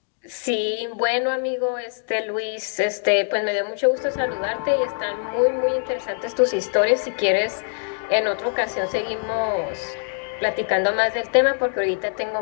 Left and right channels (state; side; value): silent; right; digital silence